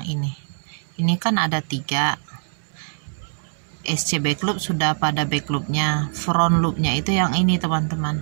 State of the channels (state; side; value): silent; left; digital silence